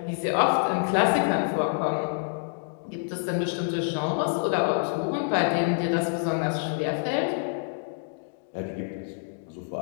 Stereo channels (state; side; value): silent; right; digital silence